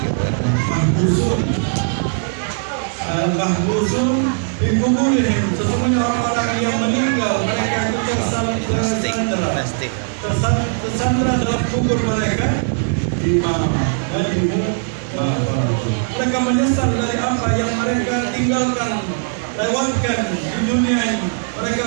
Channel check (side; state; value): left; silent; digital silence